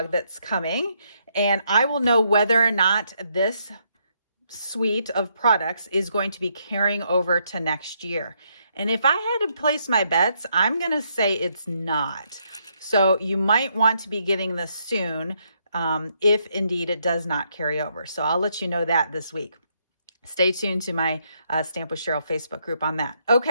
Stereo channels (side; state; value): both; inverted; correlation -0.75